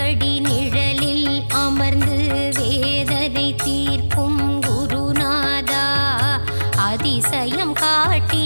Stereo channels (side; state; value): both; inverted; correlation -1.00